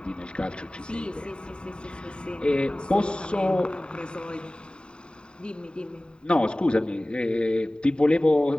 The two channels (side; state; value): right; late; 0.050 ms